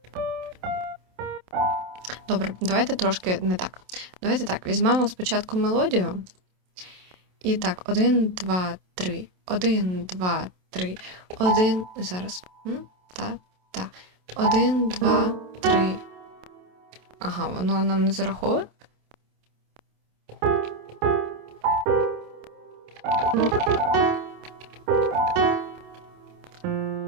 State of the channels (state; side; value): late; left; 27 ms